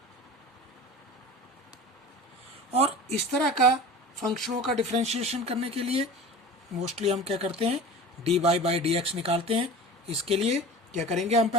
और इस तरह का फंक्शनों का डिफरेंशिएशन करने के लिए मोस्टली हम क्या करते हैं? D y by d x निकालते हैं। इसके लिए क्या करेंगे? हम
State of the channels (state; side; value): normal; both; correlation 0.37